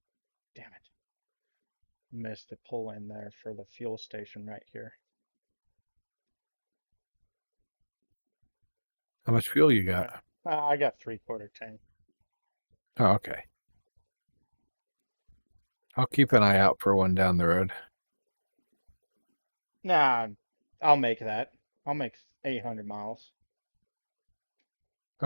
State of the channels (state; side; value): inverted; both; correlation -1.00